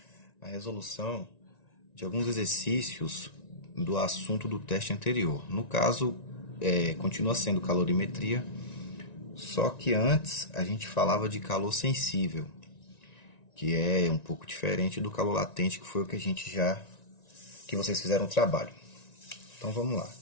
a resolução de alguns exercícios do assunto do teste anterior. No caso, continua sendo calorimetria, só que antes a gente falava de calor sensível, que é um pouco diferente do calor latente, que foi o que que vocês fizeram o trabalho. Então vamos lá.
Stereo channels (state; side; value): late; right; 1.9 ms